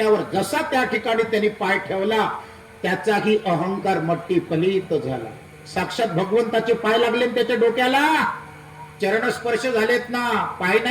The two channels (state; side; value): identical; both; correlation 1.00